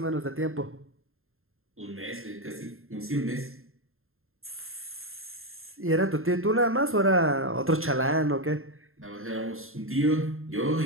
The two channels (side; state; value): left; late; 0.61 ms